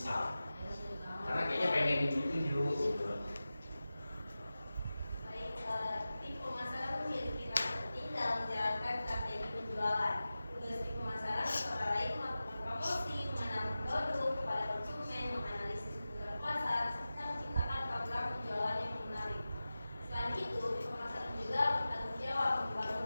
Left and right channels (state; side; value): inverted; both; correlation -0.94